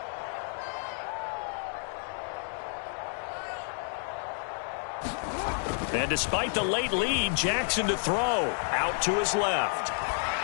And despite the late lead, Jackson to throw. Out to his left.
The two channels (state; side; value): silent; right; 58 dB below the other